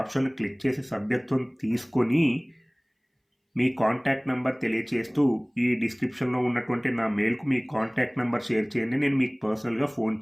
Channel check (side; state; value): both; identical; correlation 1.00